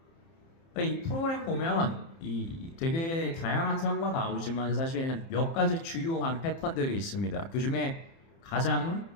이 프로그램 보면 이 되게 다양한 사고가 나오지만 사실 몇 가지 주요한 패턴들이 있습니다. 그 중에 가장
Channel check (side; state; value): right; late; 30 ms